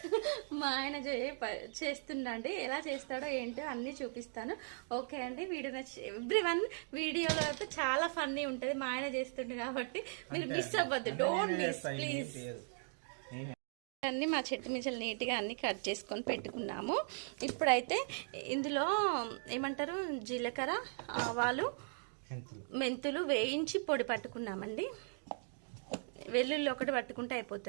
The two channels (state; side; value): silent; left; 52 dB below the other